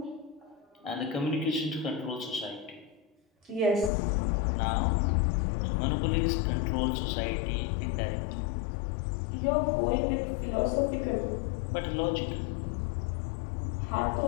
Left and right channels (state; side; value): drops out; right; at 3.9 s